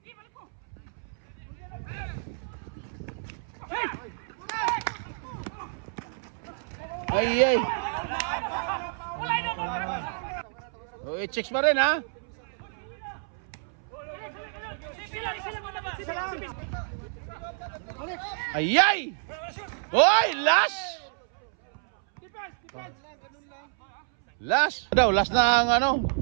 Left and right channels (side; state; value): left; silent; 59 dB below the other